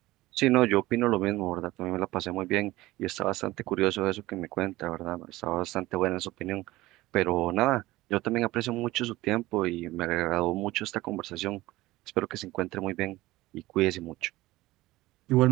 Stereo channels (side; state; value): left; quieter; 18.3 dB